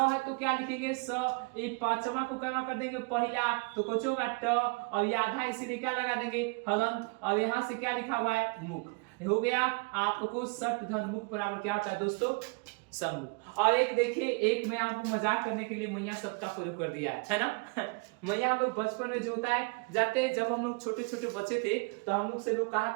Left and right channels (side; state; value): left; quieter; 31.1 dB